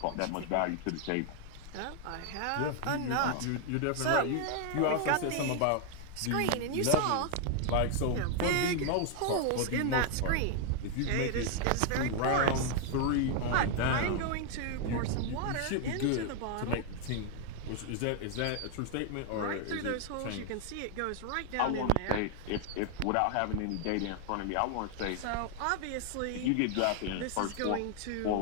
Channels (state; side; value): different; both; correlation 0.00